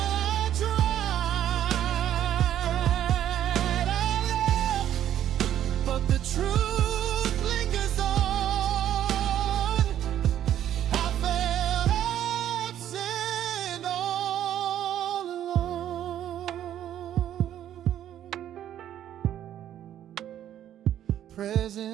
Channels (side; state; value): left; quieter; 11.1 dB